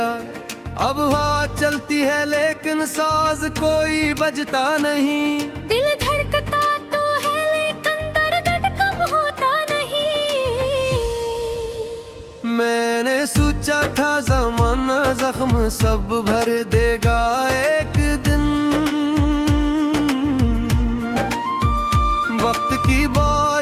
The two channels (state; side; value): identical; both; correlation 1.00